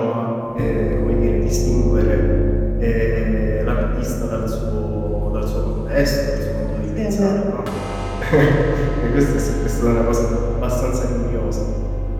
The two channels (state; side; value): identical; both; correlation 1.00